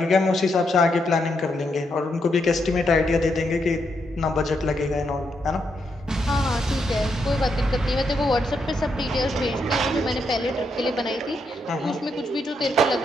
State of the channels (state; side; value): normal; both; correlation 0.79